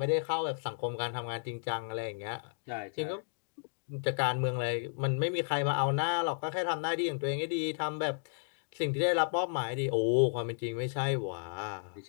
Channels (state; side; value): silent; right; digital silence